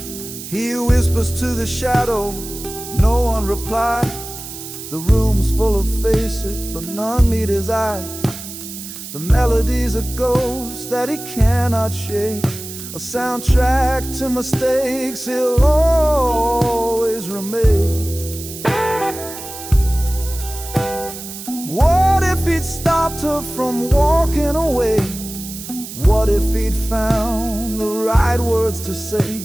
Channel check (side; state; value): right; noise; hiss, 11 dB below the sound